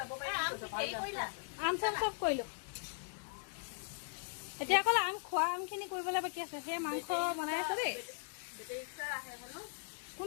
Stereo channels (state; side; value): silent; right; digital silence